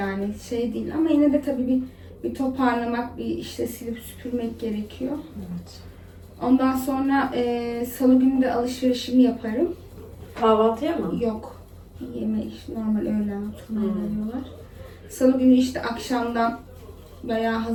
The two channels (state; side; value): identical; both; correlation 1.00